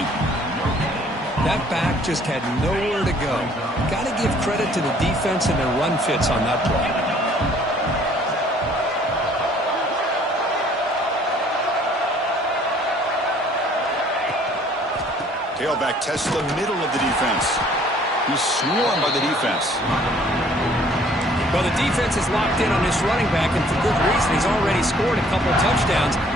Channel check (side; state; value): both; normal; correlation 0.58